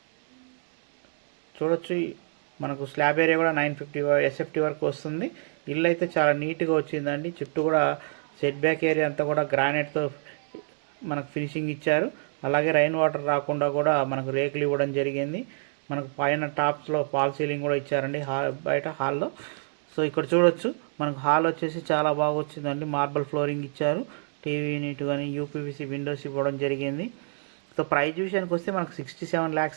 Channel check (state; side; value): silent; left; digital silence